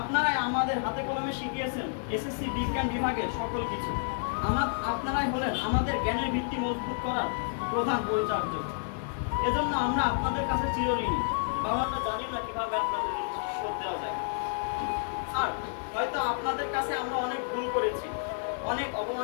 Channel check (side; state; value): right; silent; digital silence